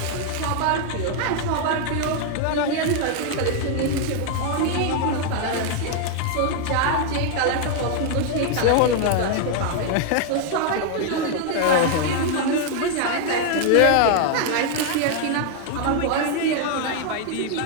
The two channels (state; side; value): different; both; correlation 0.00